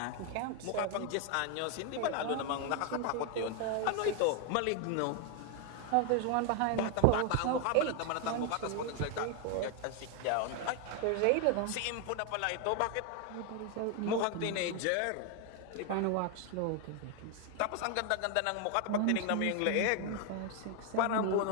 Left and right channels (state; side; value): different; both; correlation 0.01